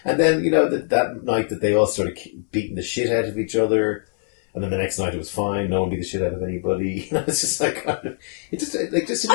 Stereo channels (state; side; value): silent; right; 64 dB below the other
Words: And then, that night that they all started beating the shit out of each other, and then the next night it was fine, no one beat the shit out of anybody. It's just like, it just didn't